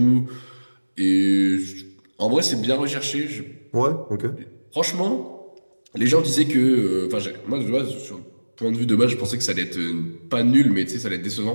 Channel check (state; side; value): inverted; both; correlation -1.00